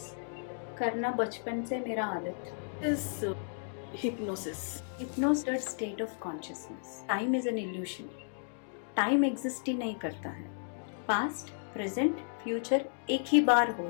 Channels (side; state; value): right; silent; digital silence